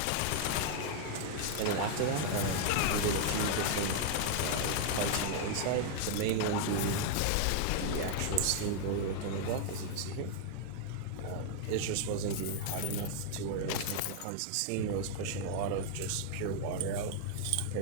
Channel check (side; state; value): both; different; correlation 0.00